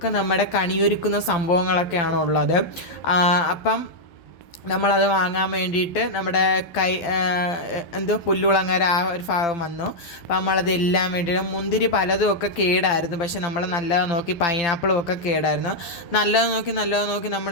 നമ്മുടെ കണിയൊരുക്കുന്ന സംഭവങ്ങളൊക്കെയാണ് ഉള്ളത്. അപ്പം നമ്മളത് വാങ്ങാൻ വേണ്ടിയിട്ട് നമ്മുടെ പുല്ലുളങ്ങര ആ ഒരു ഭാഗം വന്നു. അപ്പോൾ നമ്മളതെല്ലാം വേണ്ടിയിട്ട് മുന്തിരി പലതും ഒക്കെ കേടായിരുന്നു, പക്ഷെ നമ്മൾ നല്ലത് നോക്കി പൈനാപ്പിളും ഒക്കെ കേടായിരുന്നു. നല്ലത് നോക്കി നമ്മൾ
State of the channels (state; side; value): late; right; 12 ms